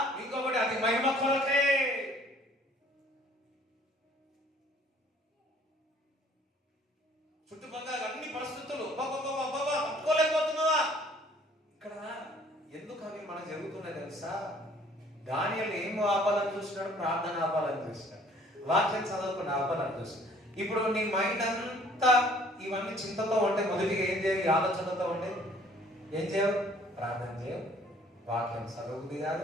ఇంకొకటి, అది మహిమ కొరకే. చుట్టుపక్కల అన్ని పరిస్థితులు తట్టుకోలేకపోతున్నావా? ఇక్కడ ఎందుకు అవి మనకు జరుగుతున్నాయి తెలుసా? దానియేలు ఏం ఆపాలని చూసినాడు? ప్రార్థన ఆపాలని చూసినాడు, వాక్యం చదవకుండా ఆపాలని చూసినాడు. ఇప్పుడు నీ మైండ్ అంతా ఇవన్నీ చింతతో ఉంటే మొదటిగా ఏం చేయాలి? ఆలోచనతో ఉంటే ఏం చేయవు? ప్రార్థన చేయవు, వాక్యం చదవబుద్ధి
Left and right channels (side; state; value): both; normal; correlation 0.57